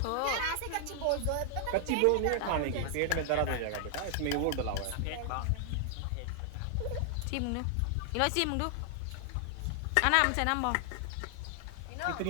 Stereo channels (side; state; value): both; different; correlation 0.00